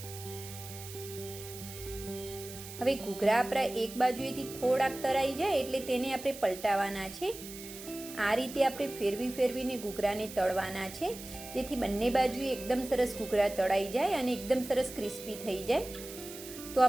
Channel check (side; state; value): right; noise; hiss, 13 dB below the sound